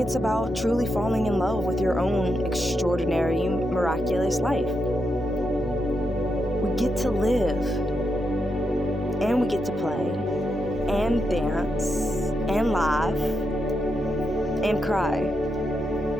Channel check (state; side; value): normal; both; correlation 0.84